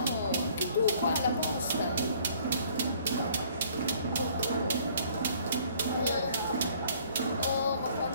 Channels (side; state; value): both; inverted; correlation -0.59